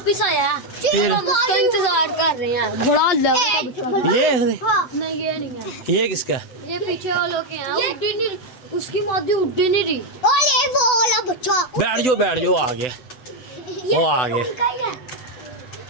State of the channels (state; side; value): late; right; 8.0 ms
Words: आया फिर हम उसका इंतजार कर रहे हैं। बड़ा ये नहीं, ये नहीं है। ये किसका? ये पीछे वालों के हैं। उड्डी नहीं, उसकी मादी उड्डी नहीं रही। ओले वो वाला बच्चा। बैठ जाओ आ गया, वो आ गया।